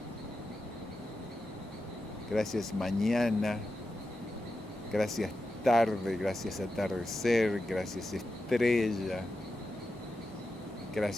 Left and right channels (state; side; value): normal; both; correlation 0.90